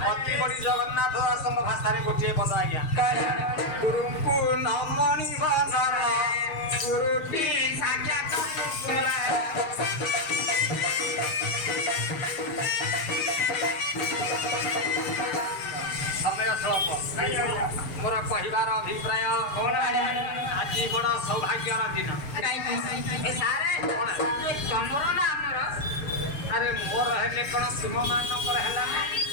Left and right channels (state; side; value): late; right; 7.8 ms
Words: ଅତି ବଡ଼ି ଜଗନ୍ନାଥ ଦାସଙ୍କ ଭାଷାରେ ଗୋଟିଏ ପଦ ଆଜ୍ଞା ଗୁରୁଙ୍କୁ ନମଣି ବଦର ଗୁରୁଟି ସାକ୍ଷାତ ସମୟ ସ୍ୱଳ୍ପ ମୋର କହିବାର ଅଭିପ୍ରାୟ ଆଜି ବଡ଼ ସୌଭାଗ୍ୟର ଦିନ ତମର ନା ଆମର ଆରେ ମୋର ହେଲେ କ'ଣ ତୁମମାନଙ୍କର ହେଲା